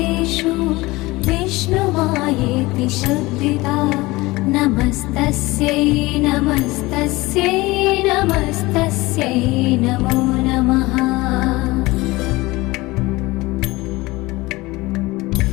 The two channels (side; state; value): right; quieter; 21.0 dB